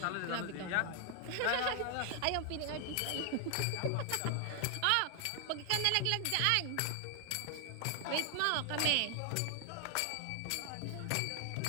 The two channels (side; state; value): both; different; correlation 0.00